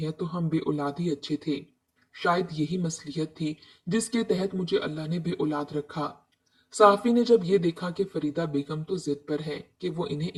तो हम बे औलाद ही अच्छे थे। शायद यही मसलियत थी जिसके तहत मुझे अल्लाह ने बे औलाद रखा। साफी ने जब ये देखा कि फरीदा बेगम तो जिद पर है कि वो इन्हें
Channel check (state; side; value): identical; both; correlation 1.00